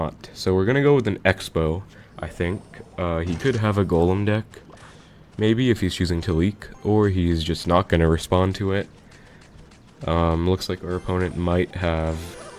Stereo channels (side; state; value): both; identical; correlation 1.00